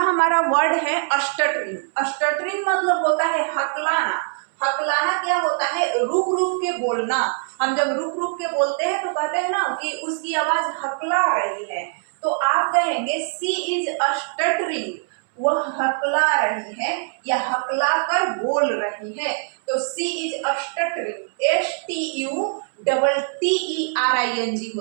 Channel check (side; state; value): left; silent; 64 dB below the other